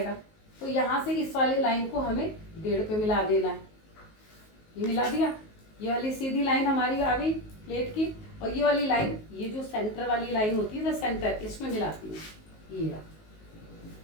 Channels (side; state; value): right; late; 19 ms